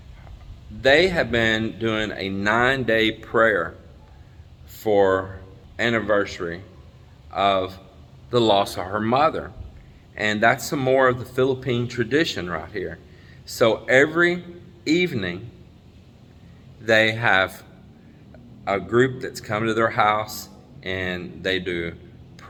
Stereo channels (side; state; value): both; identical; correlation 1.00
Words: they have been doing a 9-day prayer for anniversary of the loss of her mother. And that's some more of the Philippine tradition right here. So every evening they have a group that's come to their house, and they do